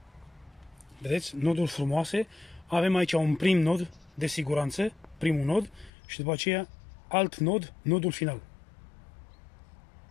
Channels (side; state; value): right; drops out; at 5.9 s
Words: Vedeți? Noduri frumoase. Avem aici un prim nod de siguranță, primul nod, și după aceea alt nod, nodul final.